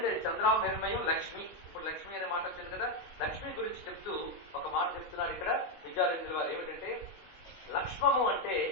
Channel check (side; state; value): right; late; 20 ms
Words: చంద్రామహిర్మయం లక్ష్మి. ఇప్పుడు లక్ష్మి అనే మాట వచ్చింది కదా, లక్ష్మి గురించి చెప్తూ ఒక మాట చెప్తున్నారు ఇక్కడ విద్యార్థులు వారు. ఏమిటంటే లక్ష్మము అంటే